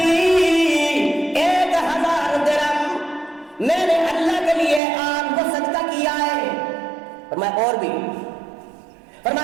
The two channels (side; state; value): left; drops out; at 4.8 s